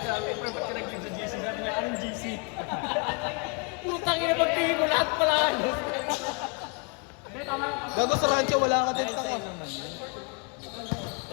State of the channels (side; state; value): right; quieter; 34.4 dB